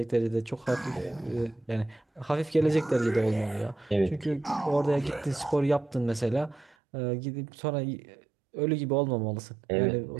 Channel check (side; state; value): left; drops out; at 6.8 s